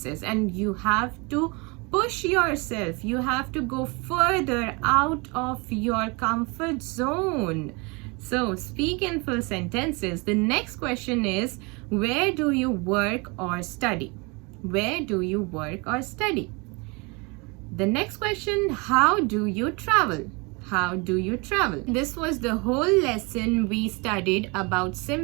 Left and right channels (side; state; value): left; quieter; 28.8 dB